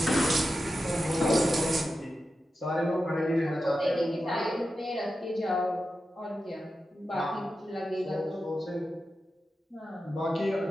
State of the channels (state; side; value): normal; both; correlation 0.91